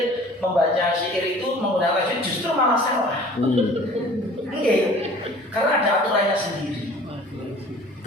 syair itu menggunakan tajwid justru malah salah. Oke, karena ada aturannya sendiri.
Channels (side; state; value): both; normal; correlation 0.47